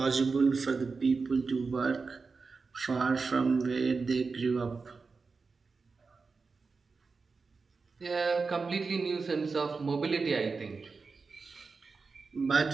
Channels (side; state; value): left; quieter; 4.5 dB